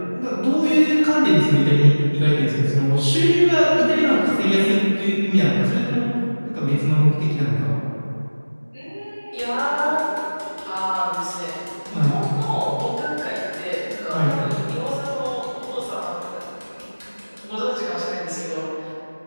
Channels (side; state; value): both; inverted; correlation -1.00